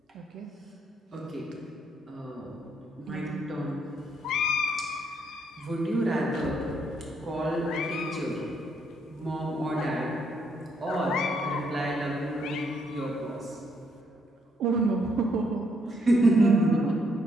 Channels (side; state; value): both; normal; correlation 0.73